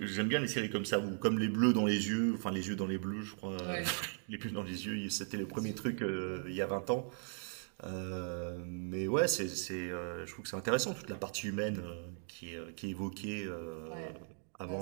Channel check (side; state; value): left; silent; 53 dB below the other